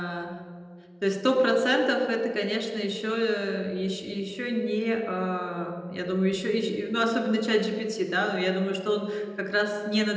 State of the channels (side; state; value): both; identical; correlation 1.00